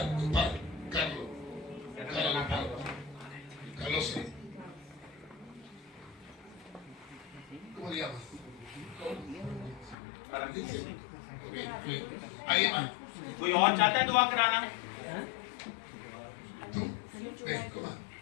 Tu padre, Carlos. तेरा Carlos, नाम Carlos. Carlos, sí. ¿Cómo te llamas? Paramjit Singh Ok, bien. ¿Alguien más? कोई और चाहता है दुआ कराना Tú. Ven, coma.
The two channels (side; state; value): right; drops out; at 10.0 s